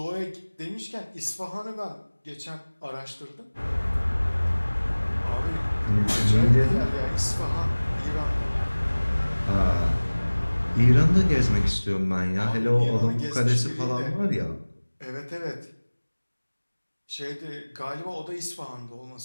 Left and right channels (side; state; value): both; inverted; correlation -1.00